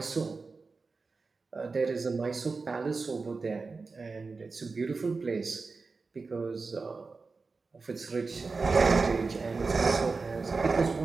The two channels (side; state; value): left; quieter; 4.2 dB